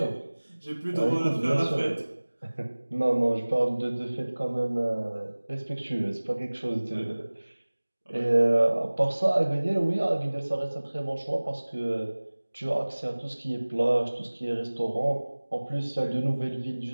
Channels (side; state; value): both; inverted; correlation -1.00